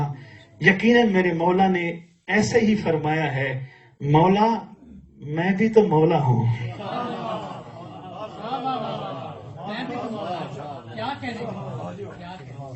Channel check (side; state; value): both; identical; correlation 1.00